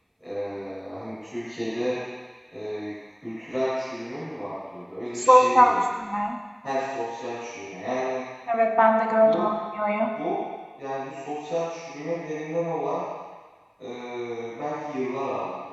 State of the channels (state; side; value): identical; both; correlation 1.00